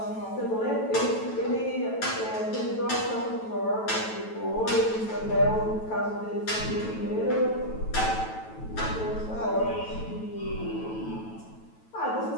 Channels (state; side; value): late; right; 9.1 ms